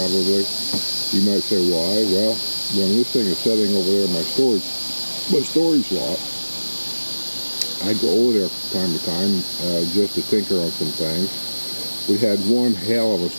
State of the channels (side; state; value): both; inverted; correlation -1.00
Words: You might say, why? Well, when this thing is sitting over there in my storage lot, I go over there from time to time just to tinker on some things. We had one hell of a